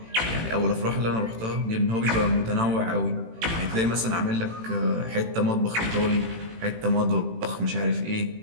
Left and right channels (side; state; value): left; late; 18 ms